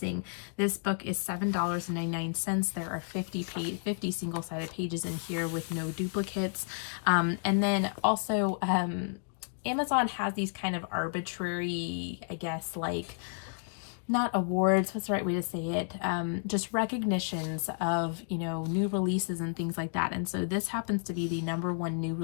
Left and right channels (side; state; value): right; silent; digital silence